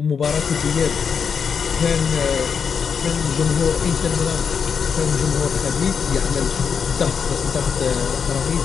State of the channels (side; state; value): right; quieter; 6.5 dB